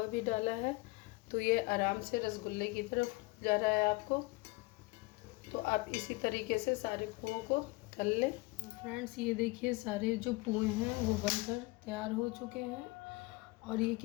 भी डाला है तो ये आराम से रसगुल्ले की तरफ जा रहा है आपको। तो आप इसी तरीके से सारे पुओं को तल लें। फ्रेंड्स ये देखिए सारे जो पुए हैं वो बनकर तैयार हो चुके हैं और ये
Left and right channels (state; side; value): quieter; right; 23.2 dB